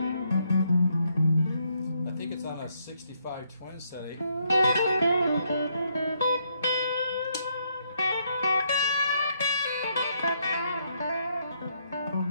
I think it's on a 65 twin setting.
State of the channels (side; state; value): both; inverted; correlation -0.75